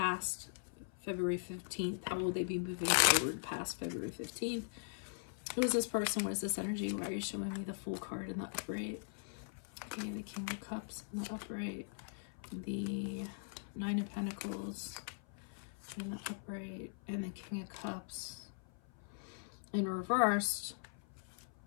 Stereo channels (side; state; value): right; silent; 51 dB below the other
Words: February 15th. How will they be moving forward past February 15th? Who is this person? What is this energy? Why are you showing me the Fool card in the upright? Okay, the King of Cups in the upright. The Nine of Pentacles in the upright. And the King of Cups in reversed.